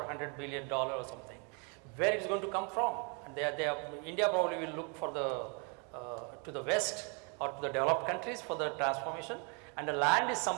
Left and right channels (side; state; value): left; quieter; 35.0 dB